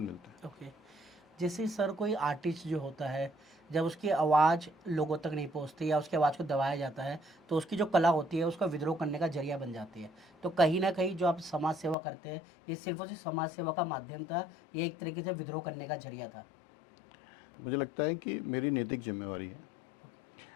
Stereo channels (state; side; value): drops out; right; at 12.0 s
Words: मिलता है। ओके। जैसे सर कोई आर्टिस्ट जो होता है, जब उसकी आवाज़ लोगों तक नहीं पहुंचती या उसकी आवाज़ को दबाया जाता है, तो उसकी जो कला होती है उसका विद्रोह करने का जरिया बन जाती है। तो कहीं ना कहीं जो आप समाज सेवा करते हैं, ये सिर्फ और सिर्फ समाज सेवा का माध्यम था, ये एक तरीके से विद्रोह करने का जरिया था? मुझे लगता है कि मेरी नैतिक जिम्मेवारी है।